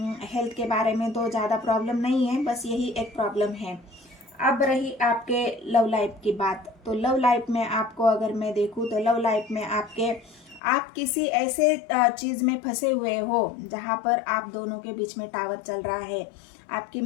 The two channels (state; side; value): drops out; right; at 10.6 s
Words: हेल्थ के बारे में तो ज़्यादा प्रॉब्लम नहीं है, बस यही एक प्रॉब्लम है। अब रही आपके लव लाइफ की बात, तो लव लाइफ में आपको अगर मैं देखूँ तो लव लाइफ में आप किसी ऐसे चीज़ में फंसे हुए हो जहाँ पर आप दोनों के बीच में टावर चल रहा है। आपकी